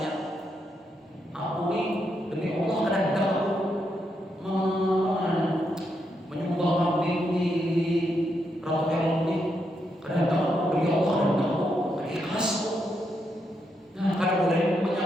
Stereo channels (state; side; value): normal; both; correlation 0.81